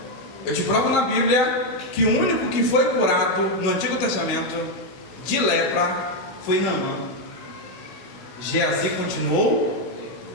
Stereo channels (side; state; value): right; late; 16 ms